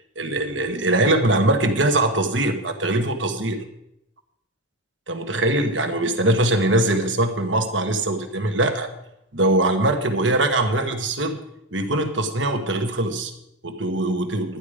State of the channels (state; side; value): normal; both; correlation 0.15